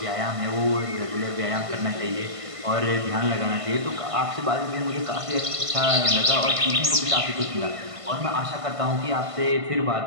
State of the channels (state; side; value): late; left; 1.5 ms